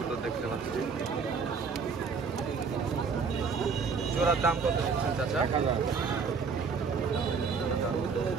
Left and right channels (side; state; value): left; quieter; 5.3 dB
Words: দেখতে পাচ্ছি। জোড়ার দাম কত দিচ্ছেন চাচা?